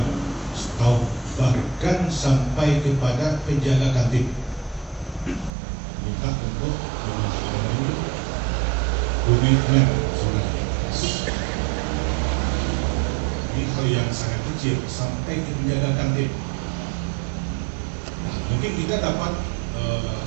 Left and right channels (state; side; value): drops out; left; at 5.5 s